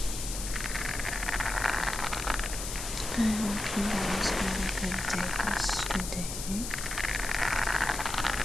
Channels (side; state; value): left; noise; hiss, 6 dB below the sound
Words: I hope you guys had a good day yesterday.